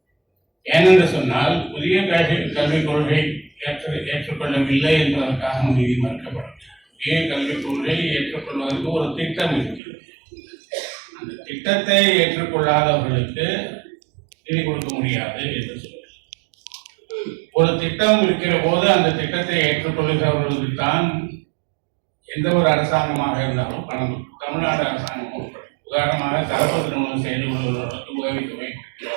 ஏனென்று சொன்னால் புதிய கல்விக் கொள்கை ஏற்றுக்கொள்ளவில்லை என்பதற்காக நிதி மறுக்கப்படும். புதிய கல்விக் கொள்கையை ஏற்றுக்கொள்வதற்கு ஒரு திட்டம் இருக்கிறது. அந்த திட்டத்தை ஏற்றுக்கொள்ளாதவர்களுக்கு நிதி கொடுக்க முடியாது என்று சொல்லுங்கள். ஒரு திட்டம் இருக்கிற போது அந்த திட்டத்தை ஏற்றுக்கொள்கிறவர்களுக்கு தான் எந்த ஒரு அரசாங்கமாக இருந்தாலும் பணம். தமிழ்நாடு அரசாங்கம் உதாரணமாக கலப்பு திருமணம் செய்து கொள்வதற்கு உதவித்தொகை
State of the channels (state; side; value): drops out; left; at 9.8 s